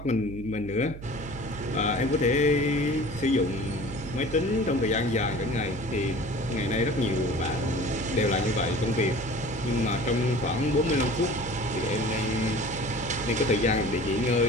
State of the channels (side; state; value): right; noise; hum, 12 dB below the sound